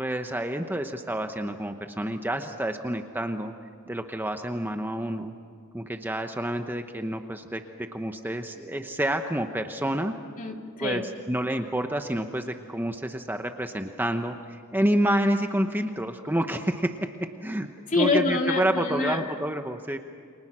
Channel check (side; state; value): both; normal; correlation 0.73